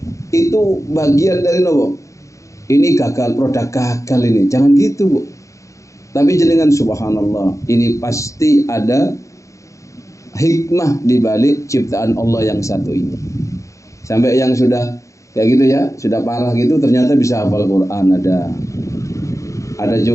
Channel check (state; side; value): late; right; 0.15 ms